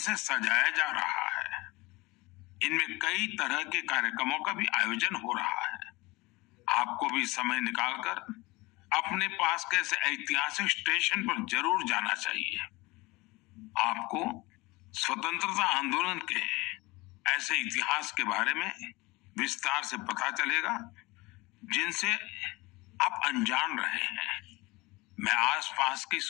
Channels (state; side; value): quieter; right; 22.6 dB